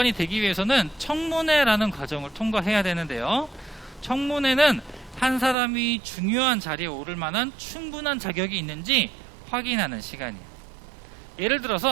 되기 위해서는 청문회라는 과정을 통과해야 되는데요. 청문회는 한 사람이 중요한 자리에 오를 만한 충분한 자격이 있는지 확인하는 시간이에요. 예를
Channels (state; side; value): drops out; left; at 5.6 s